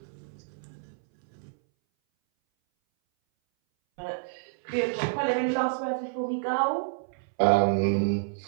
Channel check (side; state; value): left; silent; 59 dB below the other